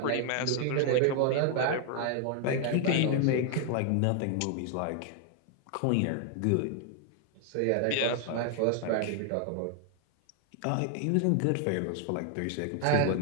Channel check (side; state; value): both; different; correlation 0.00